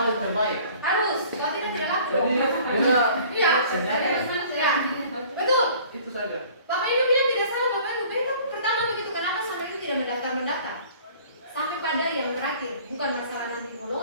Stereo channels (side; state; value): both; inverted; correlation -0.51